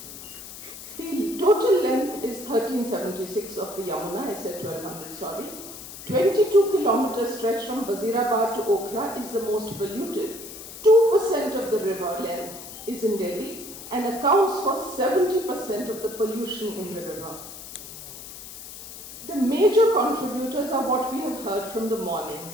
The total length is 1376 of the Yamuna, I said 1200, sorry. 22 kilometer stretch from Wazirabad to Okhla is the most polluted. 2% of the river length is in Delhi and accounts for 70% of the pollution in the river. The major contributors are what we have heard from the morning:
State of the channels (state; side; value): noise; left; hiss, 13 dB below the sound